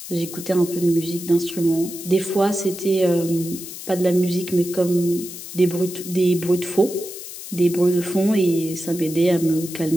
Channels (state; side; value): noise; left; hiss, 11 dB below the sound